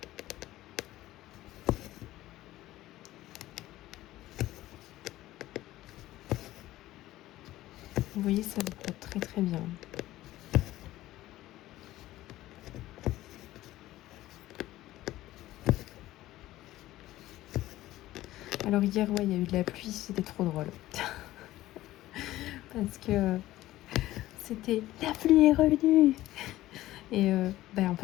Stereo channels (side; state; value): right; quieter; 15.7 dB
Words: Vous voyez, ça vous porte très très bien. Alors hier, ouais, il y a eu de la pluie, c'était trop drôle. Parce que c'était la pluie est revenue. Et en